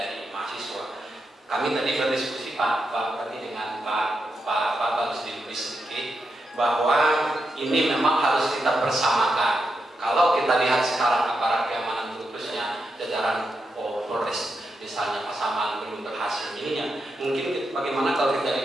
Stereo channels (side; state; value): both; normal; correlation 0.85